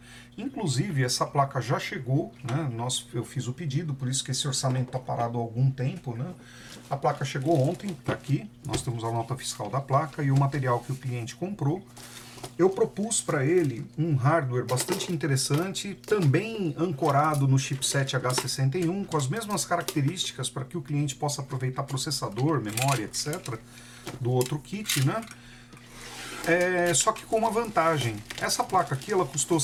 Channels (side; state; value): both; identical; correlation 1.00